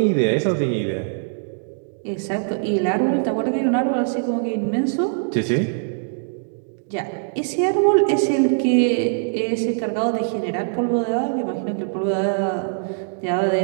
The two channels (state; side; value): silent; left; digital silence